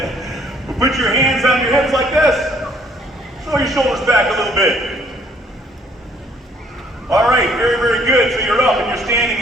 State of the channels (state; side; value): normal; both; correlation 0.63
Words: Put your hands on your hips like this. Throw your shoulders back a little bit. All right, very, very good. So you're up and you're standing